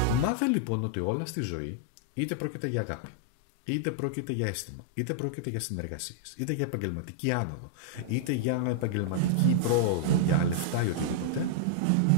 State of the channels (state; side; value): different; both; correlation -0.01